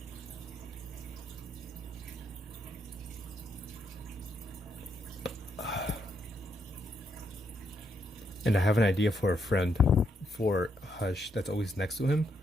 And I have an idea for a friend, for Hush, that's always next to him.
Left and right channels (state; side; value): normal; both; correlation 0.77